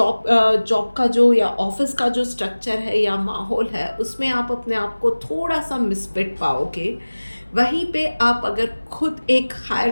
का जो या ऑफिस का जो स्ट्रक्चर है या माहौल है, उसमें आप अपने आप को थोड़ा सा मिसफिट पाओगे। वहीं पे आप अगर खुद एक हायर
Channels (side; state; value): both; inverted; correlation -1.00